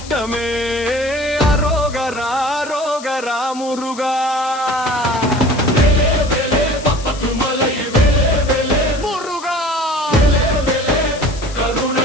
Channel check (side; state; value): left; noise; hiss, 16 dB below the sound